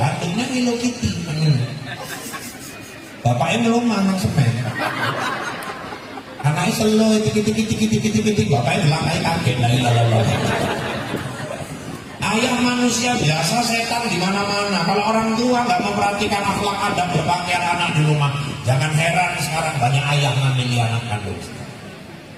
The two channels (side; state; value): both; identical; correlation 1.00